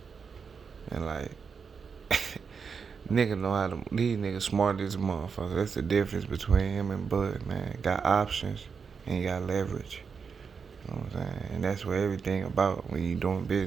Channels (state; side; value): quieter; left; 5.9 dB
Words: And like, nigga know how to, these niggas smart as a motherfucker. That's the difference between him and Bud, man. Got options and you got leverage. You know what I'm saying? And that's what everything about when you doing